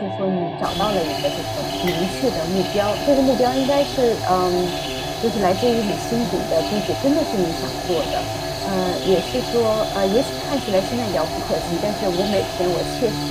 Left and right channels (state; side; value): identical; both; correlation 1.00